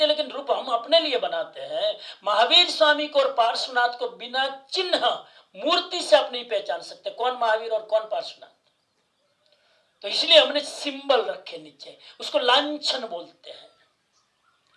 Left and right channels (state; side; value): identical; both; correlation 1.00